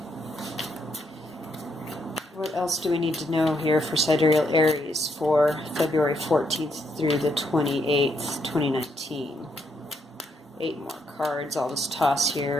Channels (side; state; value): both; normal; correlation 0.76